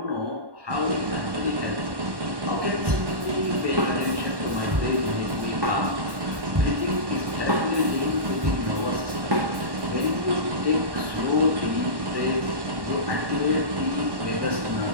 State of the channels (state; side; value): late; left; 1.1 ms